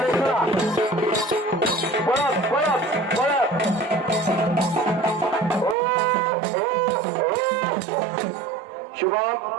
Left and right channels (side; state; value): left; drops out; at 5.8 s